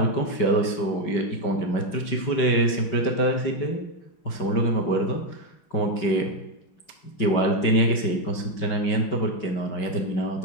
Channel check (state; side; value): late; right; 5.2 ms